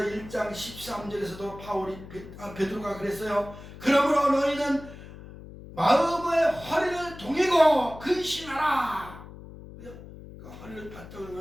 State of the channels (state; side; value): noise; left; hum, 15 dB below the sound